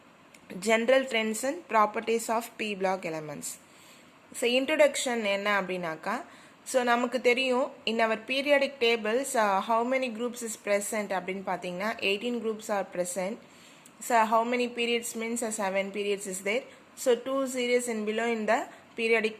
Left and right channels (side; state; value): both; identical; correlation 1.00